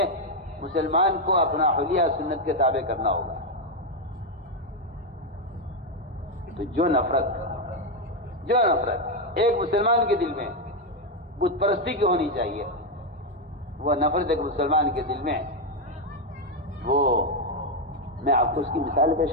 مسلمان کو اپنا حلیہ سنت کے تابع کرنا ہوگا. تو جو نفرت ایک مسلمان کے دل میں بت پرستی کی ہونی چاہیے، وہ نفرت ایک مسلمان کے دل میں، وہ میں آپ کو اس کی مثال پیش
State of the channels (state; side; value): normal; both; correlation 0.03